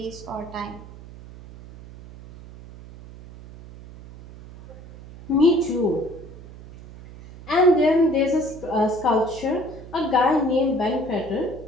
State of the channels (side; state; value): right; noise; hum, 17 dB below the sound